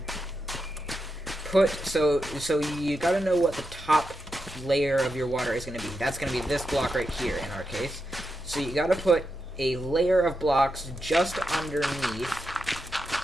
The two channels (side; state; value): both; normal; correlation 0.86